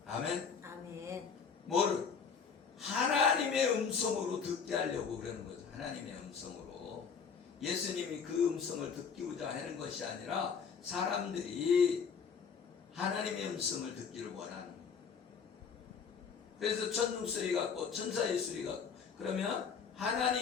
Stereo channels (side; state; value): right; quieter; 6.1 dB